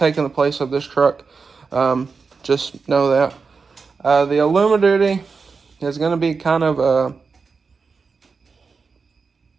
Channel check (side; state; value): left; quieter; 4.9 dB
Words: the place of this truck. Just know that. The Illumiduty is going to be kind of